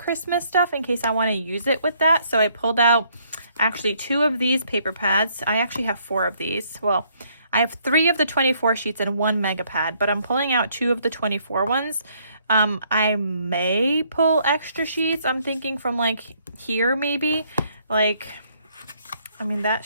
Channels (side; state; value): both; inverted; correlation -0.67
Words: stuff in case I want to use it with that. So I pulled out actually 2 of these paper pads. I actually have 4 of these. Well, I have 3 of the 24 sheets and 1 mega pad, but I'm pulling out 2 of the 24 ones. I may pull extra sheets. I'm thinking from like here maybe. Like, I mean,